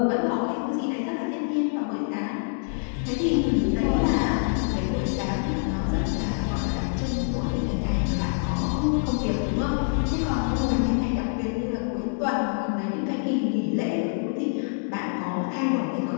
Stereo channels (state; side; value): silent; right; digital silence